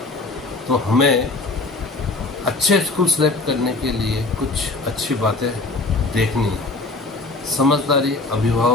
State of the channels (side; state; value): right; quieter; 3.3 dB